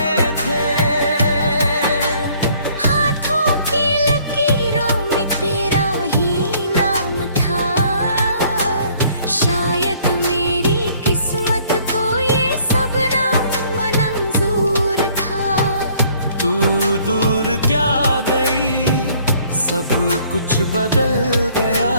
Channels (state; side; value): inverted; both; correlation -0.60